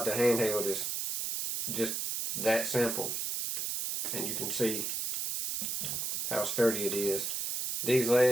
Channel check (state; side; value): noise; right; hiss, 2 dB below the sound